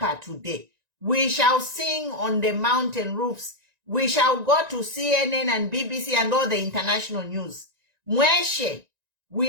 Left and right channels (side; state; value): left; late; 1.9 ms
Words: today. We shall sing on the mountain roofs. We shall go to CNN and BBC and all the international news. Mweshe,